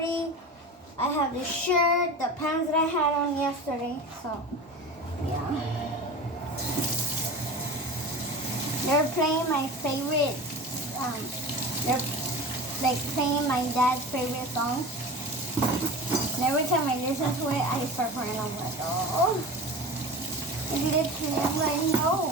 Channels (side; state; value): both; normal; correlation 0.32